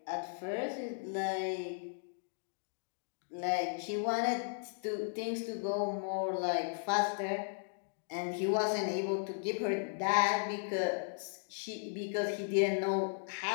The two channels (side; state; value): right; silent; digital silence